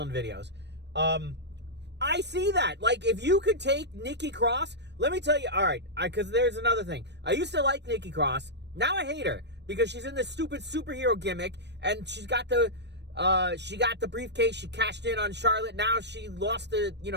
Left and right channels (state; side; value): late; left; 0.50 ms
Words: videos. I see that. Like, if you could take Nikki Cross, let me tell you, all right, because there's another thing. I used to like Nikki Cross. Now I hate her because she's in this stupid superhero gimmick, and she got the briefcase. She cashed in on Charlotte. Now she lost the